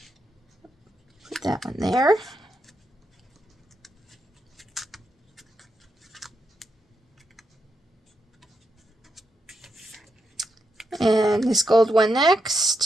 Put that one there. And this gold one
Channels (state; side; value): normal; both; correlation 0.82